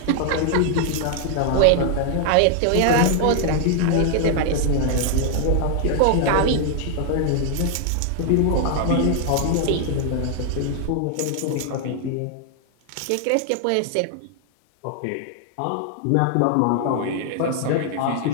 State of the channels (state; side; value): different; both; correlation 0.00